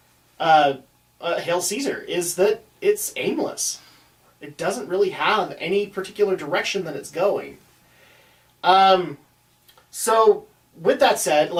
Hail Caesar, is that it's aimless. It doesn't really have any particular direction that it's going. So, with that said,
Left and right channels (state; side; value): identical; both; correlation 1.00